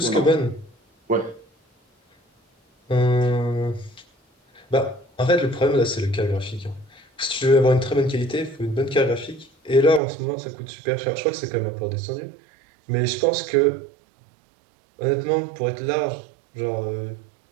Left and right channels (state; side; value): drops out; left; at 10.0 s